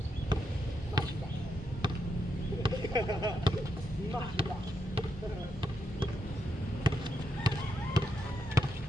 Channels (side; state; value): both; normal; correlation 0.82